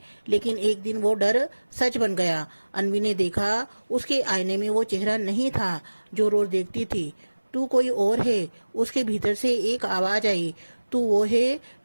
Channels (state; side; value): inverted; both; correlation -1.00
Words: लेकिन एक दिन वो डर सच बन गया। अन्वी ने देखा उसके आईने में वो चेहरा नहीं था जो रोज देखती थी। तू कोई और है। उसके भीतर से एक आवाज आई, तू वो है